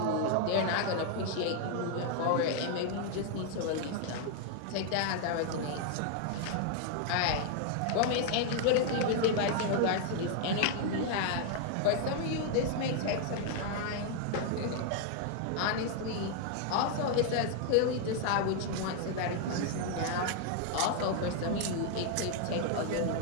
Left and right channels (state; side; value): different; both; correlation 0.00